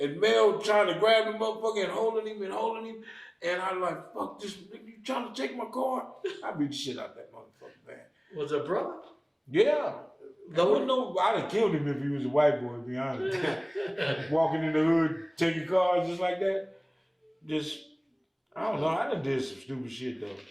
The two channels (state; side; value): identical; both; correlation 1.00